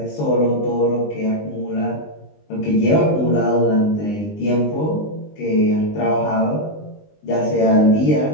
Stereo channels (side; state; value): right; late; 20 ms